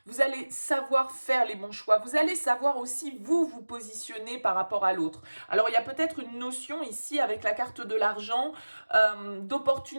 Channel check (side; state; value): both; inverted; correlation -1.00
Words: vous allez savoir faire les bons choix. Vous allez savoir aussi vous positionner par rapport à l'autre. Alors, il y a peut-être une notion ici avec la carte de l'argent,